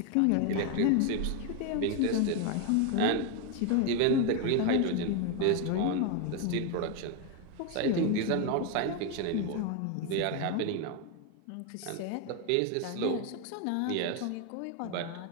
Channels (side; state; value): both; different; correlation 0.01